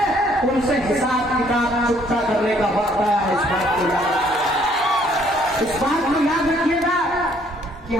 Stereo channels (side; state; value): both; normal; correlation 0.64